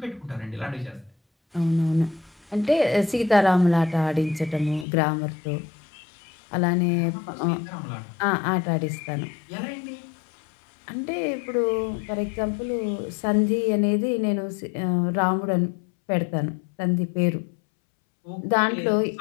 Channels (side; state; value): right; drops out; at 4.9 s